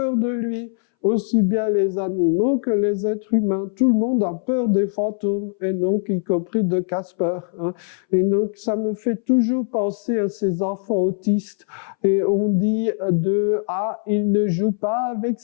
de lui. Aussi bien les animaux que les êtres humains. Tout le monde a peur des fantômes, et donc y compris de Casper. Hein. Et donc ça me fait toujours penser à ces enfants autistes. Et on dit il ne joue pas avec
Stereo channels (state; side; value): silent; right; 63 dB below the other